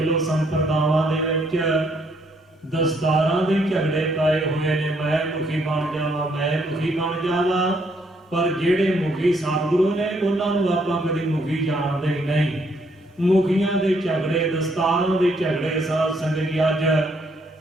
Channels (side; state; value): both; normal; correlation 0.70